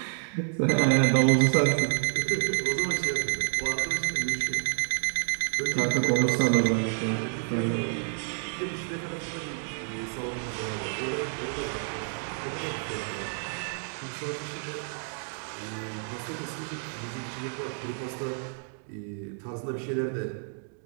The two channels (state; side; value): silent; left; 59 dB below the other